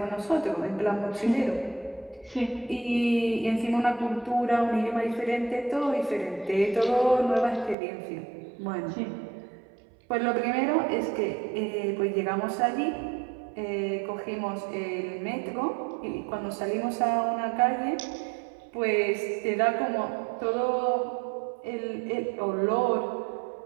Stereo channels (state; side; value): drops out; left; at 7.8 s